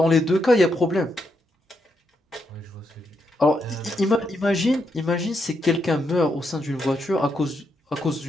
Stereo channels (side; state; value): both; normal; correlation 0.80